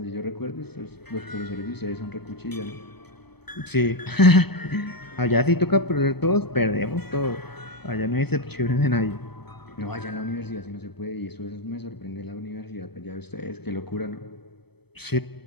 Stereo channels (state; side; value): late; right; 0.97 ms